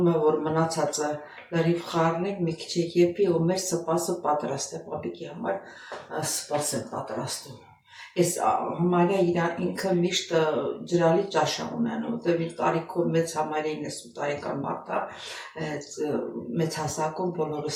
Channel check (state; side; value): identical; both; correlation 1.00